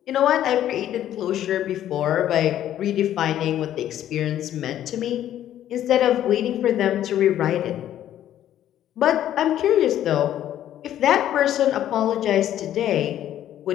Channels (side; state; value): right; quieter; 11.7 dB